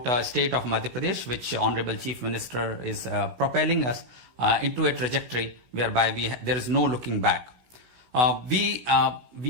state of Madhya Pradesh, which Honorable Chief Minister is propelling us into a trajectory whereby there is no looking back. We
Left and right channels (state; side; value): late; left; 16 ms